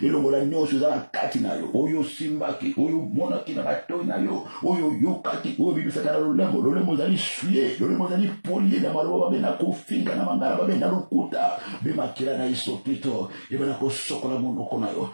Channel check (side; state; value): both; inverted; correlation -1.00